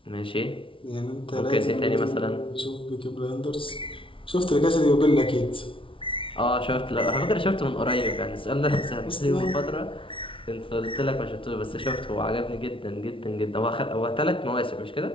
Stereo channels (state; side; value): late; right; 0.25 ms